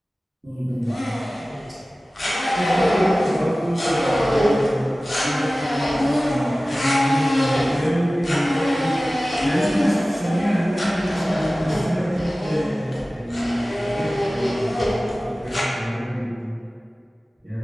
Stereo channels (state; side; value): normal; both; correlation 0.97